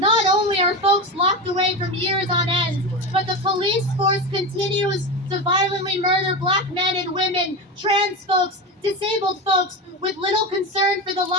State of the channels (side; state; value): both; normal; correlation 0.21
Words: only are folks locked away from years on end, but the police force continues to violently murder Black men and women, trans folks, disabled folks, with little concern for the